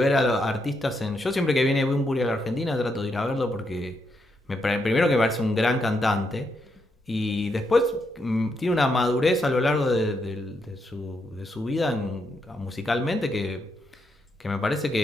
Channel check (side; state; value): both; normal; correlation 0.80